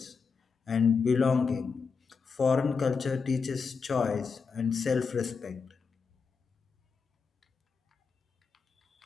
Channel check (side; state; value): right; quieter; 5.3 dB